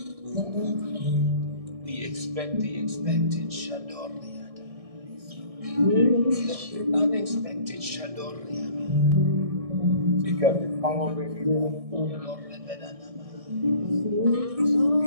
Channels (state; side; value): late; left; 1.6 ms